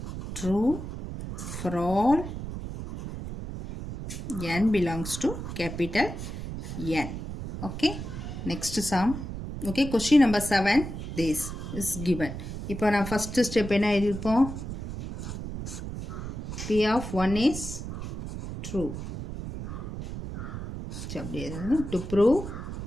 true for all n belongs to capital N. Okay, next sum. Okay, question number 7. This is given. இப்போ நான் ஃபர்ஸ்ட் ஸ்டெப் என்ன எழுதிருப்போம்? P of 1 is true. அப்படியே to prove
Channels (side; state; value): right; noise; rumble, 7 dB below the sound